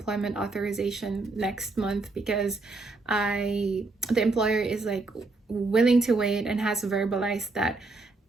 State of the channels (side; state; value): left; quieter; 3.4 dB